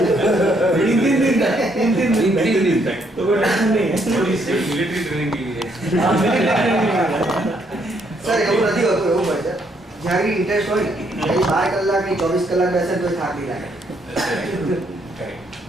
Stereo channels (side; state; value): both; normal; correlation 0.72